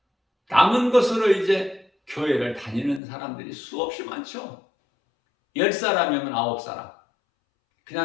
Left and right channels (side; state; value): right; drops out; at 3.0 s